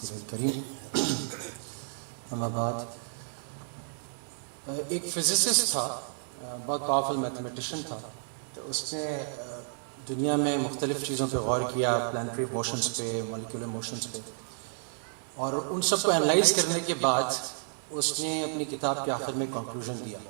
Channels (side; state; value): left; silent; digital silence